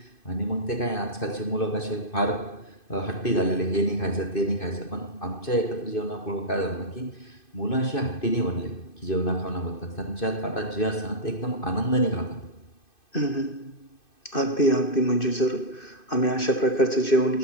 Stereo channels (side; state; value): right; late; 2.5 ms